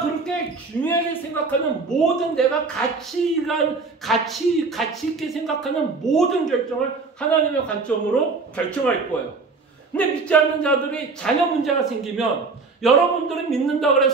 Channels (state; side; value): quieter; left; 4.2 dB